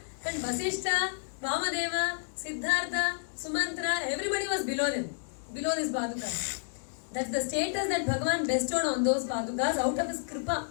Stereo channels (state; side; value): silent; right; digital silence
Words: and Vasishtha, Vamadeva, Siddhartha, Sumantra, everybody was below them, below this Paduka. That's the status that Bhagavan bestowed on those Padukas out of his kripa.